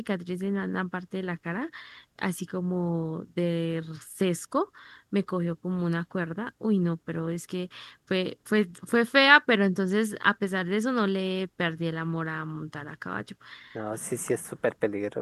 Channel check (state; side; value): identical; both; correlation 1.00